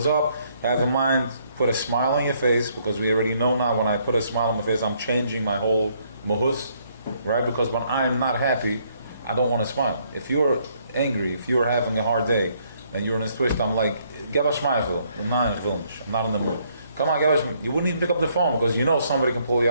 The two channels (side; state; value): both; inverted; correlation -0.69